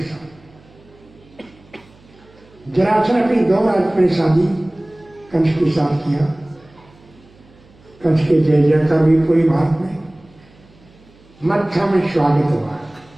साथ। जरासंध अपनी 2 राजकुमारी शादी कंस के साथ किया। कंस के जय जयकार भी पूरी भारत में, मत्था में स्वागत हुआ।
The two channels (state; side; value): noise; right; hum, 28 dB below the sound